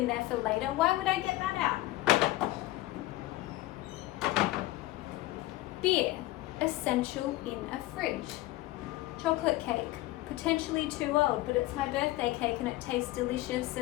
there for later. Why would I get that out? Beer, essential in a fridge. Chocolate cake, potentially too old, but it's my birthday cake and it tastes delicious,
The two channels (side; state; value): right; quieter; 17.5 dB